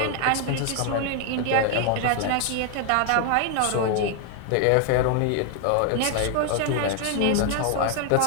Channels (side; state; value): both; different; correlation 0.01